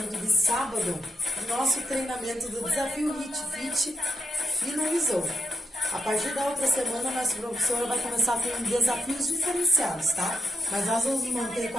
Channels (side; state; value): both; normal; correlation 0.82